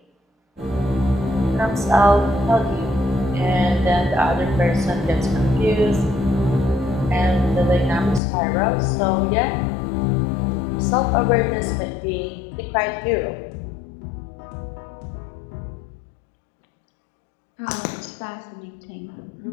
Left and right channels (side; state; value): right; drops out; at 8.2 s